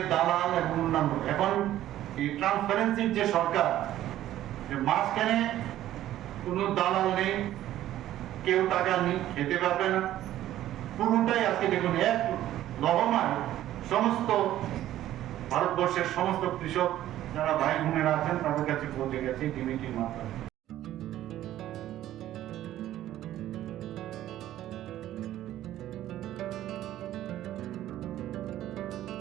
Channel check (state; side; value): quieter; left; 13.2 dB